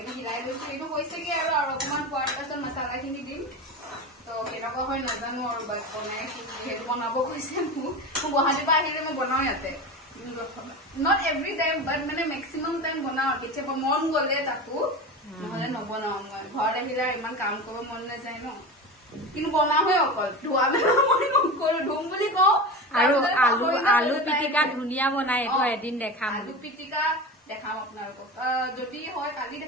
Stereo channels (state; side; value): normal; both; correlation 0.27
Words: হিলাই লৈছো। এইটো হৈছেগে আৰু অকমান খোৱাৰ পাছত মছলাখিনি দিম। তো কেনেকুৱা হয় নাজানো, আৰু বনাইছো যিহেতু বনাব কৈছে মোক গুৱাহাটীৰ পৰা আহিলে মই বনাও ইয়াতে, নট এভৰি টাইম, বাট মানে মেক্সিমাম টাইম বনাও, কেতিয়াবা মন গ'লে তাকো, নহলে নবনাও। মই ঘৰত আহিলে ইমান কাম কৰিব মন নাযায় ন, কিন্তু বনাওৱে অকল, ধোৱা মেলা মই নকৰো, ধুম বুলি কওঁ। আৰু আলু পিটিকা ধুনীয়া বনাই, এইটো এদিন দেখাম। আলু পিটিকা দেখাম আপোনালোকক, যদি হয় কালি